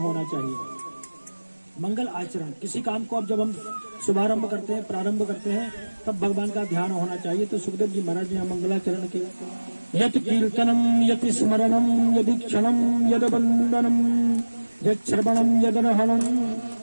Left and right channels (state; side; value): inverted; both; correlation -1.00